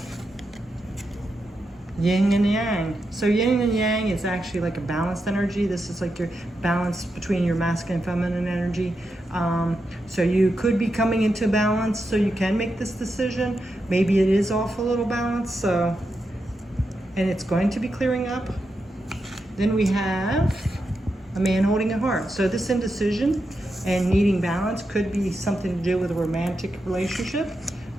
yin and yang. So yin and yang is actually like a balanced energy. This is like your balance between your masculine and feminine energy. So you could be coming into balance, so you can make this decision. Maybe it is off a little balance, so, and it's going to be clearing up. Then we have a man holding a heart. So this indecision and needing balance could be something to do with a romantic relationship.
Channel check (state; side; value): normal; both; correlation 0.87